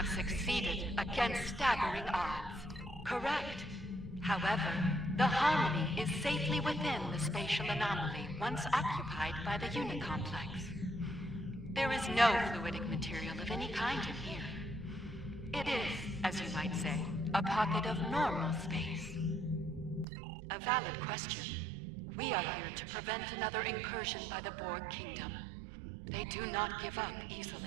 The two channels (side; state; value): left; drops out; at 20.1 s